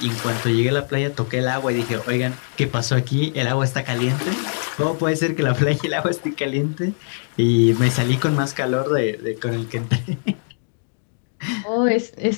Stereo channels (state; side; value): silent; right; digital silence